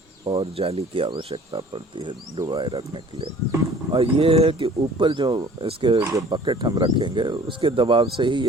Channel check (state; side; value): normal; both; correlation 0.49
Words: और जाली की आवश्यकता पड़ती है डुबाए रखने के लिए। और ये है कि ऊपर जो इसके जो बकेट हम रखेंगे उसके दबाव से ही